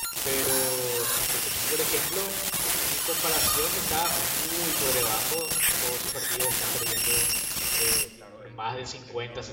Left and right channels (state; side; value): identical; both; correlation 1.00